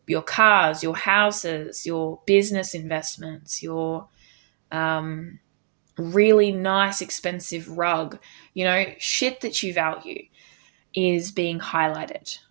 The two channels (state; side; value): silent; left; digital silence